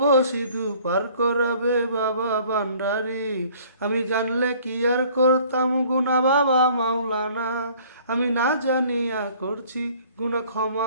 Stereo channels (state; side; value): inverted; both; correlation -0.55